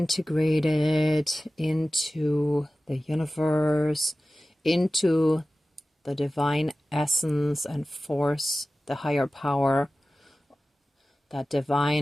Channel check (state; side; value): normal; both; correlation 0.96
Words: into the universe, into the divine essence and force, the higher power, that